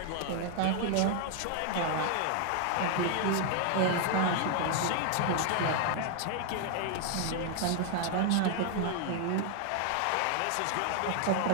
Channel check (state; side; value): different; both; correlation 0.00